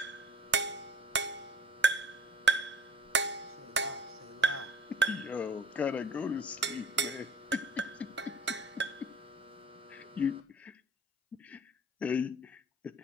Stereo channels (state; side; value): normal; both; correlation 0.48